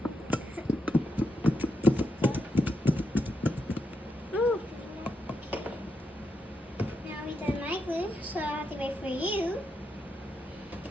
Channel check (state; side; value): normal; both; correlation 0.82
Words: Ooh. Now we done my glue, so I have to wait for you.